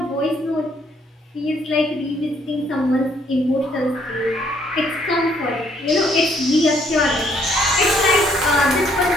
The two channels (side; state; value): both; normal; correlation 0.67